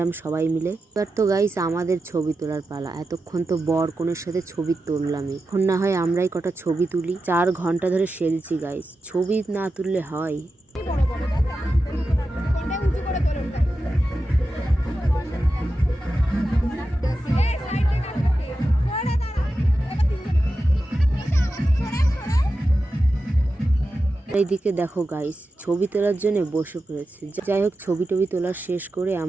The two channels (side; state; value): both; normal; correlation 0.91